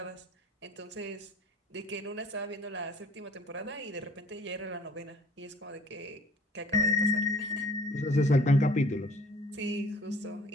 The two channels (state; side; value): normal; both; correlation 0.52